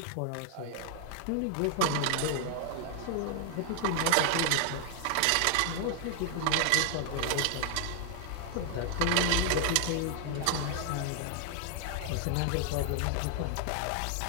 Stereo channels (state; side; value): different; both; correlation 0.00